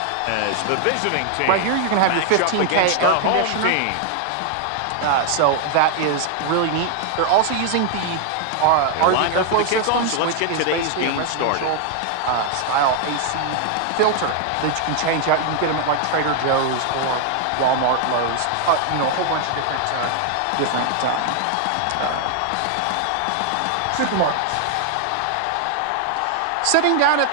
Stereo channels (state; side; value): different; both; correlation 0.00